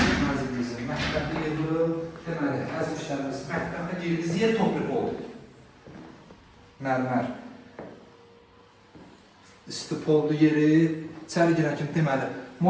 Mənzilimizin mətbəxi yığılır. Deməli, əziz müştərimiz, mətbəxə girdiğiniz yer topluq oldu. Mərmər. İstipoldu yeri. İçəri girən kimi deməli,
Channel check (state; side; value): identical; both; correlation 1.00